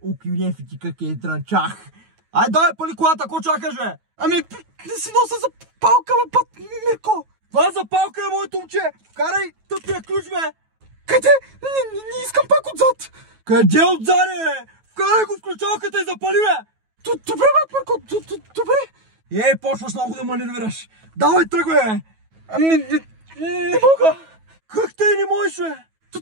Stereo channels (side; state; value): left; late; 9.3 ms